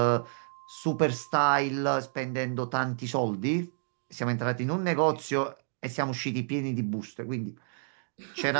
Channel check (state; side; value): silent; left; digital silence